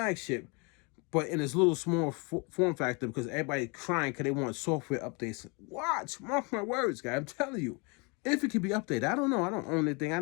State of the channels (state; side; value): quieter; right; 31.4 dB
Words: but in this little small form factor, because everybody crying because they want software updates. Watch, mark my words, guys. I'm telling you, if it can be updated. I don't know. I don't own that thing.